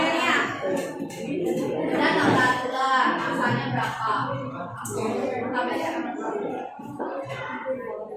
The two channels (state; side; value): identical; both; correlation 1.00